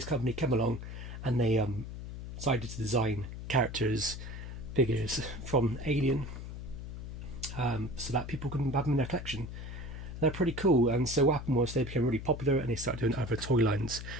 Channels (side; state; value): left; noise; hum, 9 dB below the sound